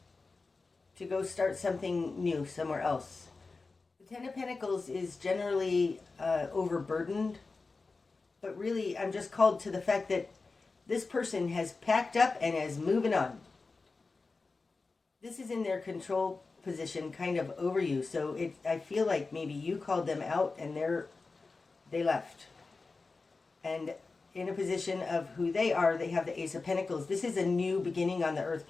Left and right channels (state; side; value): quieter; right; 4.0 dB